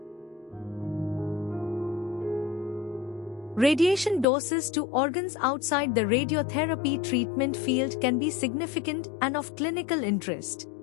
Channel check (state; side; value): drops out; right; at 4.2 s